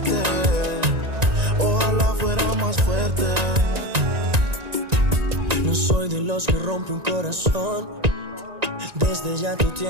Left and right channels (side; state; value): left; late; 1.9 ms